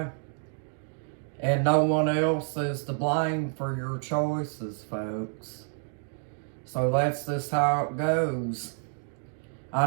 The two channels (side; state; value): left; silent; 59 dB below the other